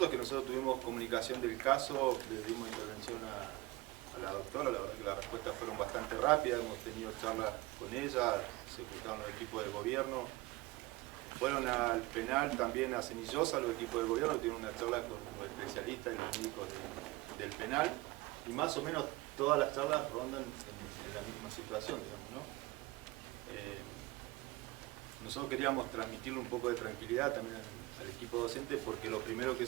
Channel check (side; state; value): left; quieter; 20.7 dB